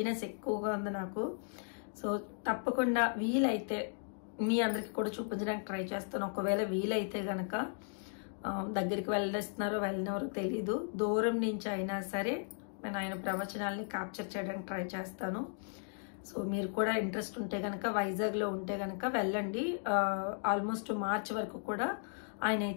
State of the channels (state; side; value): silent; right; digital silence